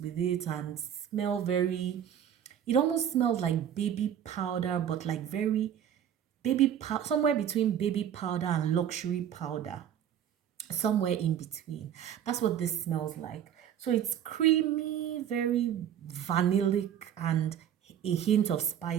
it and smell very, it almost smells like baby powder, but like very somewhere between baby powder and luxury powder, somewhere in between. That's what this smells like. So it's creamy, very vanillic, and a hint of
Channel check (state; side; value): quieter; left; 9.6 dB